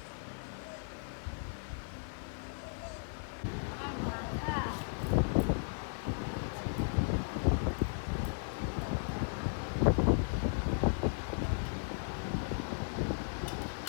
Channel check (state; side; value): silent; right; digital silence